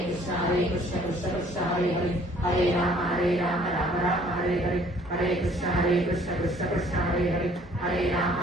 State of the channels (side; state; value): both; normal; correlation 0.58